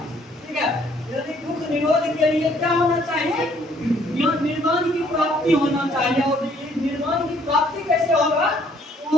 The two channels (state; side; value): normal; both; correlation 0.63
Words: ठीक है, यानी दुख निरोध के लिए क्या होना चाहिए? निर्माण की प्राप्ति होना चाहिए। और निर्माण की प्राप्ति कैसे होगा?